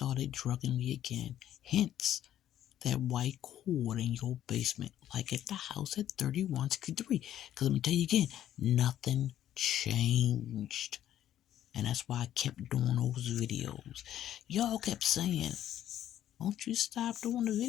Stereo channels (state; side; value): quieter; right; 11.6 dB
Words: drugging me again. Hence that white cord in your basement, like at the house at 3163. Because let me tell you again, nothing changed. And that's why I kept doing those videos. Y'all kept saying, "Won't you stop doing the